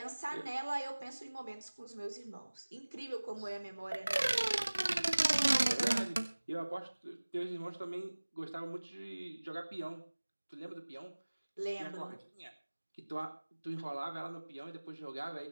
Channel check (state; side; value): inverted; both; correlation -1.00